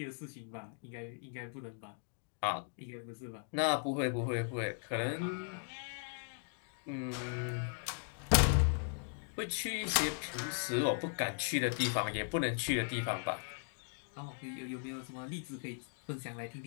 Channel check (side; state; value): right; silent; digital silence